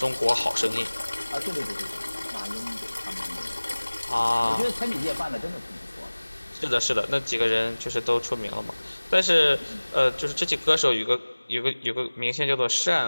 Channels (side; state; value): both; inverted; correlation -1.00